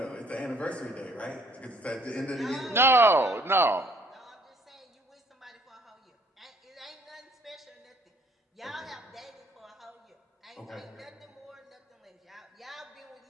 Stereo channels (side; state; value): both; normal; correlation 0.62